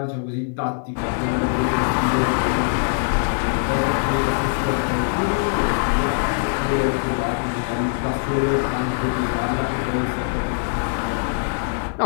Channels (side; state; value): right; silent; digital silence